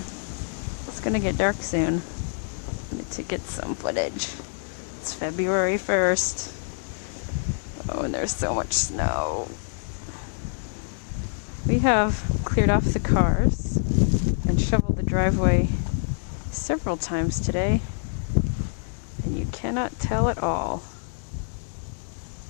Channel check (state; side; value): silent; right; digital silence